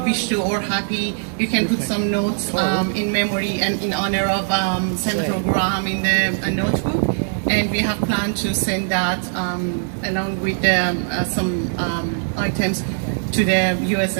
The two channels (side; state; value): left; silent; 65 dB below the other